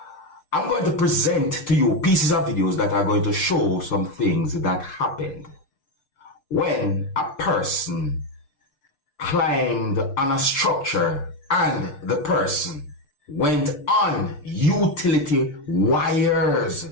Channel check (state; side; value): late; right; 6.7 ms